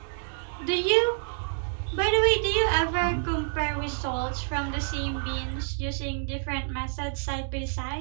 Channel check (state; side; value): silent; left; 59 dB below the other